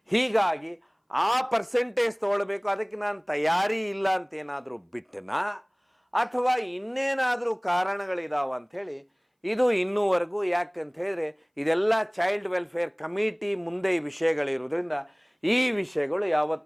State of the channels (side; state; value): both; identical; correlation 1.00